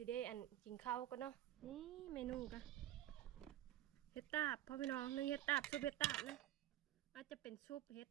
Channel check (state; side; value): quieter; left; 13.6 dB